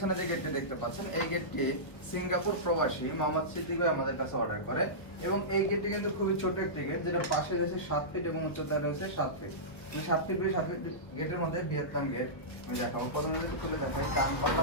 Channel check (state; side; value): late; right; 1.3 ms